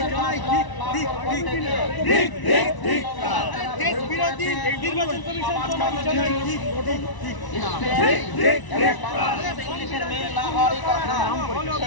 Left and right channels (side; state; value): right; late; 1.0 ms